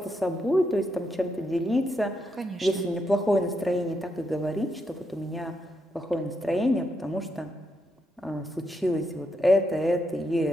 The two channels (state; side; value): normal; both; correlation 0.81